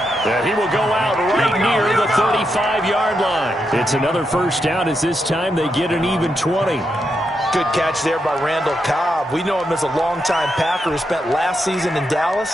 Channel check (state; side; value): normal; both; correlation 0.83